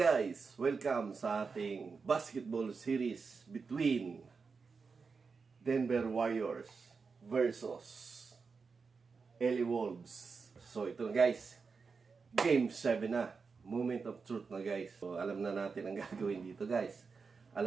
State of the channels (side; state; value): left; quieter; 5.0 dB